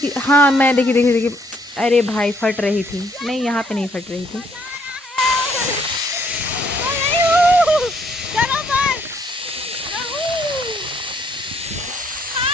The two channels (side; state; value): both; normal; correlation 0.68